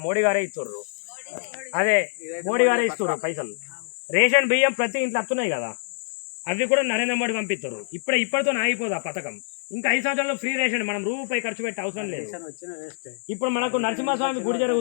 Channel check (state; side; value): silent; right; digital silence